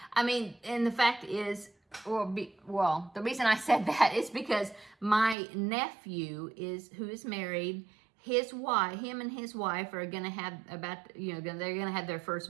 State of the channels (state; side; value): drops out; left; at 5.4 s